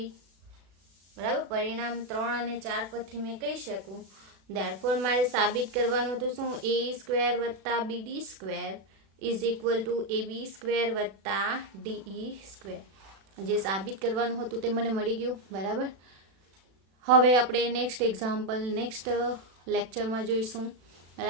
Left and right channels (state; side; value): late; left; 36 ms